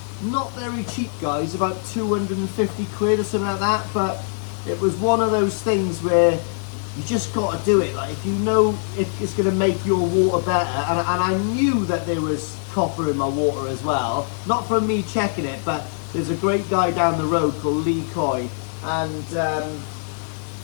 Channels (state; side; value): silent; right; digital silence